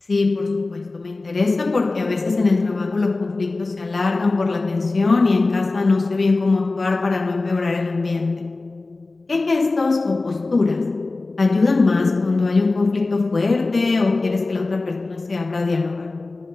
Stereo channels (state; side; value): quieter; right; 3.4 dB